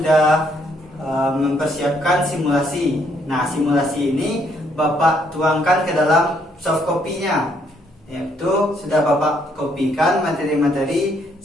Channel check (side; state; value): both; normal; correlation 0.70